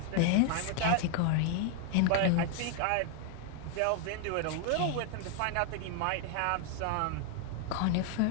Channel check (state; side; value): different; both; correlation 0.00